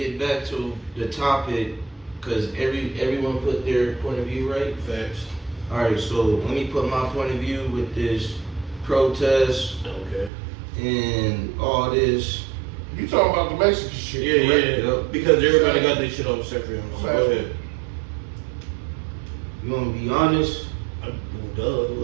back to the topic, because everyone put their point of view right. Facts. All right, so let me put my point of view with this protest Okay. and all this. You talking about the Mexican shit? Yeah, correct? yeah. Yep. Because everybody got their shit off separate. So go ahead. You want to be honest? Duh.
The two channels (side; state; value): left; drops out; at 10.3 s